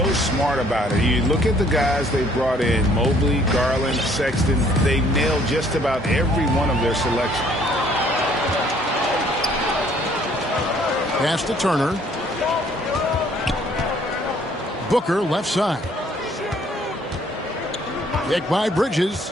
smart about it. You look at the guys they brought in, Mobley, Garland, Sexton. They nailed just about every one of their selections. Pass to Turner. Booker left side. Kick by Bridges.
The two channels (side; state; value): both; normal; correlation 0.61